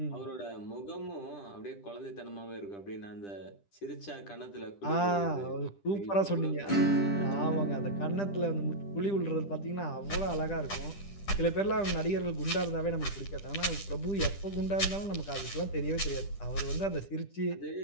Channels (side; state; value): right; late; 10 ms